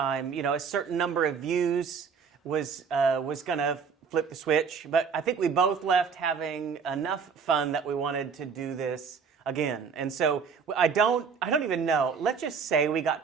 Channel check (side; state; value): left; quieter; 6.0 dB